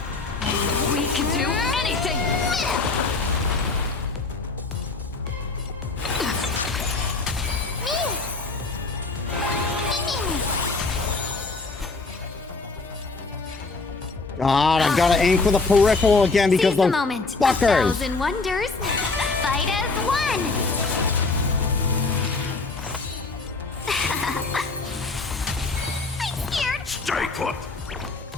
We can do anything! God, I gotta aim for the peripheral again because Seize the those moment. fuckers. 1,000 wonders. Fight as one. I'm scared. Stay put!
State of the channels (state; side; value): quieter; right; 3.8 dB